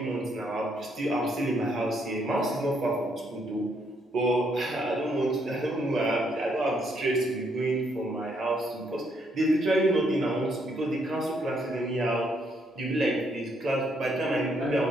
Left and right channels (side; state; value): both; normal; correlation 0.73